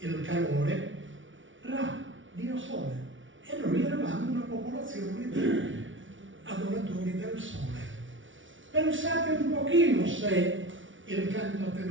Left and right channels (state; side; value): late; left; 0.56 ms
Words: calore, Ra, dio Sole. E noi eravamo una popolazione di adoratori del Sole. Pensate un pochino se il canto a